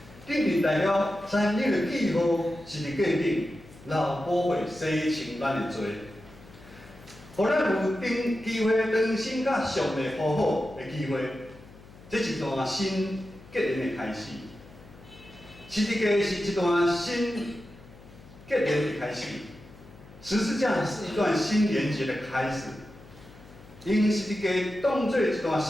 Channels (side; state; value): left; noise; hum, 21 dB below the sound